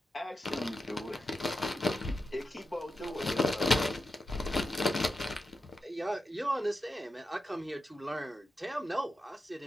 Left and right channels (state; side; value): normal; both; correlation 0.88